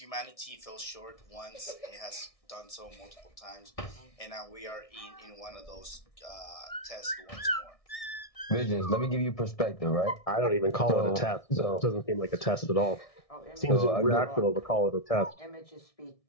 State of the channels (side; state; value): right; late; 1.6 ms